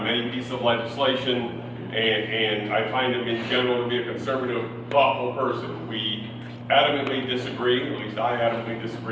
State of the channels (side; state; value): both; identical; correlation 1.00